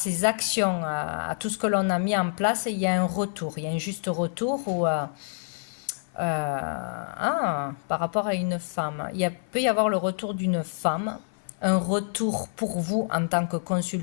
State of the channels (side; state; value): right; silent; 57 dB below the other